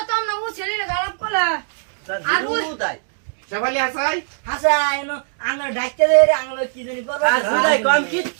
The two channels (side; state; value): left; silent; digital silence